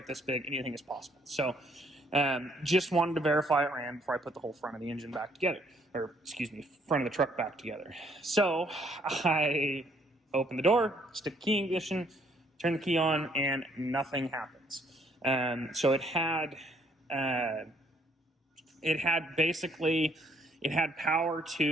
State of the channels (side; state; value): both; normal; correlation 0.66